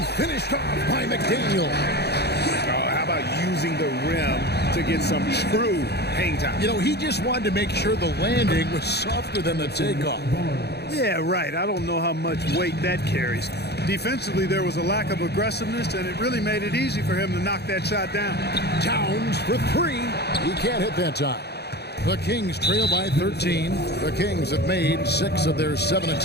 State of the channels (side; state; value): right; late; 0.48 ms